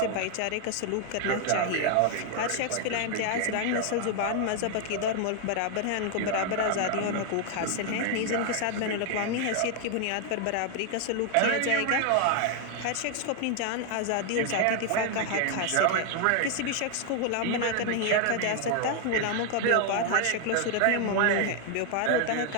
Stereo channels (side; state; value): both; different; correlation 0.00